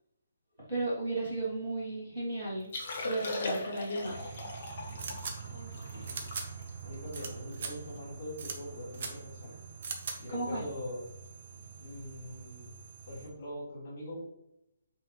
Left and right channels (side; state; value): both; inverted; correlation -0.74